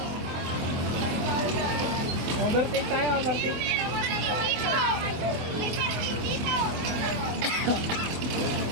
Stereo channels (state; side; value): late; left; 24 ms